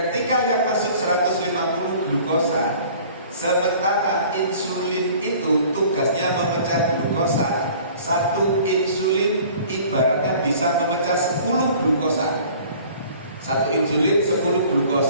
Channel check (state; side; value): inverted; both; correlation -0.49